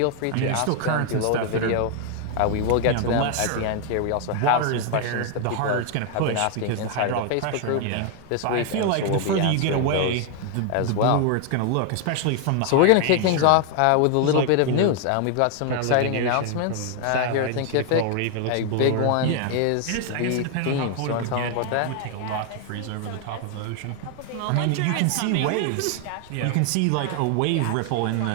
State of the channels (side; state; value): both; different; correlation 0.00